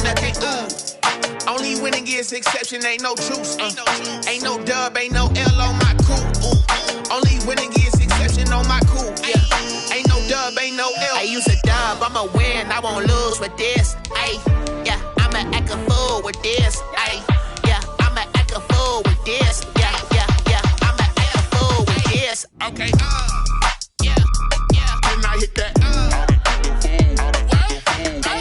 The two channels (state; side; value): identical; both; correlation 1.00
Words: nothing. Only winning is exception, ain't no truce. Ain't no dub, ain't no L on my crew. Only winning is exception on my crew. Yeah. Ain't no dub, ain't no L. I use a dub, I'ma win, I won't lose with this. Ay, yeah, I'ma act a fool with this. Ay, yeah, I'ma act a fool with this. Yeah, yeah, yeah, I'ma act a fool with this. Okay, yeah, yeah. Then I hit that.